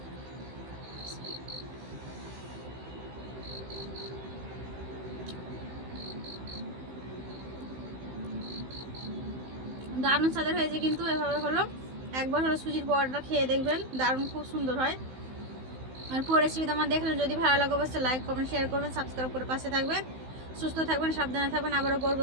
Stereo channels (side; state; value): left; late; 16 ms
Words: দারুণ স্বাদের হয়েছে কিন্তু, এভাবে হলো একবার হলো সুজির পরোটা খেয়ে দেখবেন, দারুণ খুব সুন্দর হয়। আর পুরো রেসিপিটা আমার দেখলেন, যদি ভালো লাগে অবশ্যই লাইক কমেন্ট শেয়ার করবেন, সাবস্ক্রাইব করে পাশে থাকবেন। সুস্থ থাকবেন, সাবধানে থাকবেন। আবারও